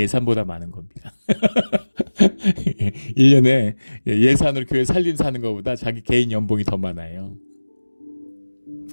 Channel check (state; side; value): inverted; both; correlation -1.00